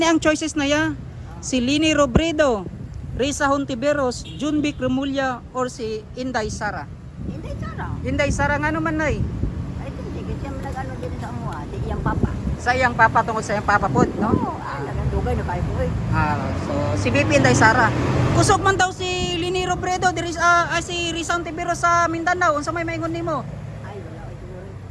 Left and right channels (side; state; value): both; identical; correlation 1.00